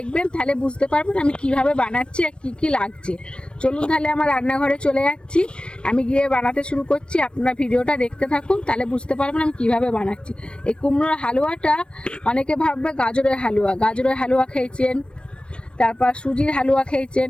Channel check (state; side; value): late; right; 0.056 ms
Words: তাহলে বুঝতে পারবেন আমি কিভাবে বানাচ্ছি আর কি কি লাগছে। চলুন তাহলে আমার রান্নাঘরে চলে যাচ্ছি, আমি গিয়ে বানাতে শুরু করছি। আপনারা ভিডিওটা দেখতে থাকুন, তাহলে বুঝতে পারবেন আমি কিভাবে বানাচ্ছি। এই কুমড়োর হালুয়াটা অনেকে ভাববে গাজরের হালুয়া। গাজরের হালুয়া খেয়েছেন, তারপর সুজির হালুয়া খেয়েছেন।